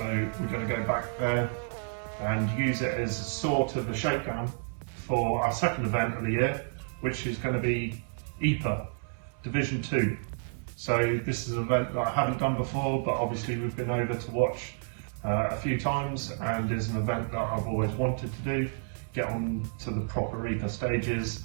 we're going to go back there and use it as sort of a shakedown for our second event of the year, which is going to be EPA Division 2. So this is an event that I haven't done before, but obviously we've been over to watch a few times, and is an event that I've always wanted to do, get on to the proper EPA stages.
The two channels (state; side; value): silent; left; 58 dB below the other